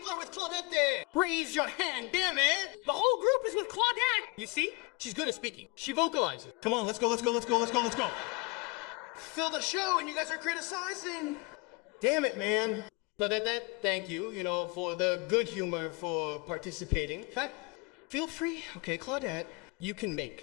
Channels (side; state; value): right; quieter; 26.9 dB